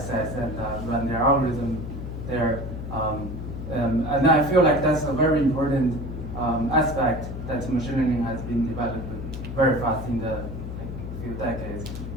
and run their algorithm there. And I feel like that's a very important aspect that machine learning has been developed very fast in the few decades.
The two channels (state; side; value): noise; left; hum, 7 dB below the sound